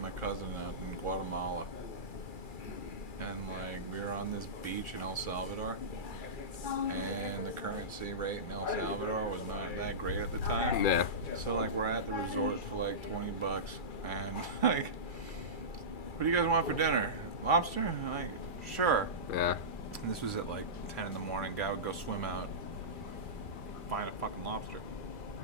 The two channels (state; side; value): late; right; 2.4 ms